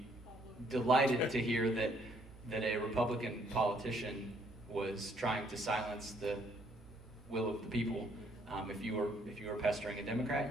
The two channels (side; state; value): both; normal; correlation 0.67